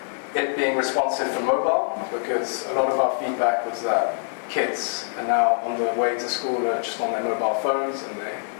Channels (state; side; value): silent; right; 62 dB below the other